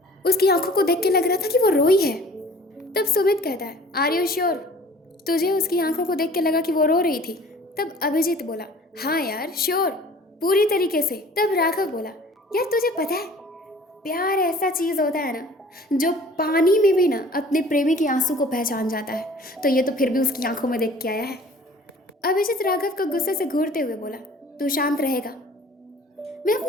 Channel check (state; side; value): normal; both; correlation 0.49